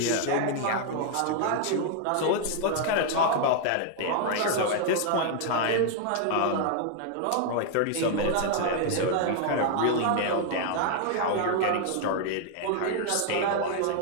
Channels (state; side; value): different; both; correlation 0.00